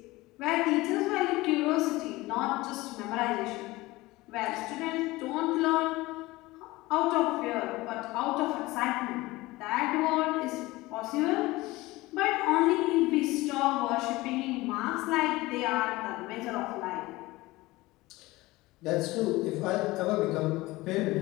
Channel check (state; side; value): quieter; right; 20.0 dB